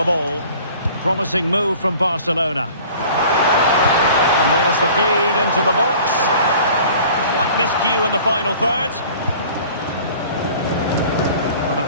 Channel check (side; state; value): both; inverted; correlation -0.47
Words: ball. Promising move from Barcelona. And there's the feed into the box. Slight miscue in the final third. Well,